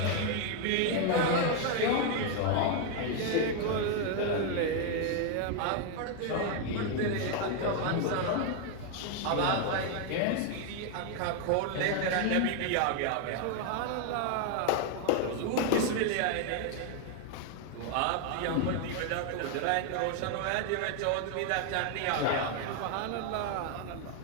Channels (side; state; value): both; different; correlation 0.01